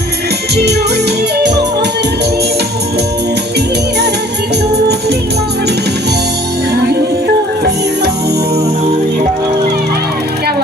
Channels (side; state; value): both; normal; correlation 0.53